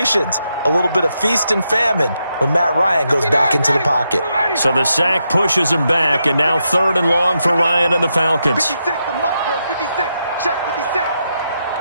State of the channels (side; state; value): both; inverted; correlation -0.83